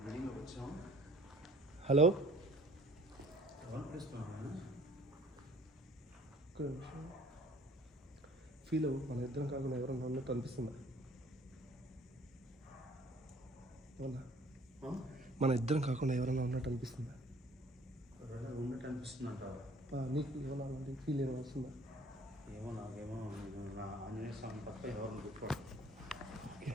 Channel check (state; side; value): normal; both; correlation 0.54